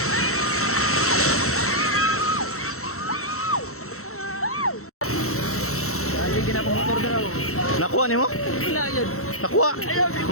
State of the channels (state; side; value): late; right; 0.63 ms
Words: Dali ginapamotor daw. Nakuha ni mo? Wala yun. Nakuha.